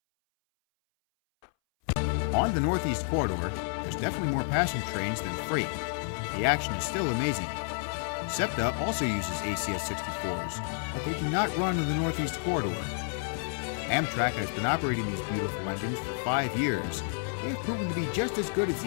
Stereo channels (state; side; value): silent; right; 58 dB below the other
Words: On the Northeast Corridor, there's definitely more passenger trains than freight. The action is still amazing. Septa also uses ACS-64s, but they do not run in the Northeast Corridor. Amtrak has been operating these beautiful engines for 5 years. They have proven to be just as good as